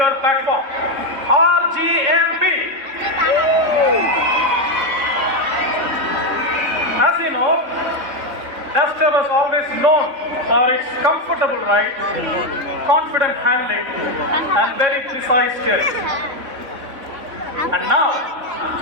Platform, RGMP. As you know, Duster was always known for its comfortable ride, confident handling and very precise steering. And now,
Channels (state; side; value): late; left; 3.6 ms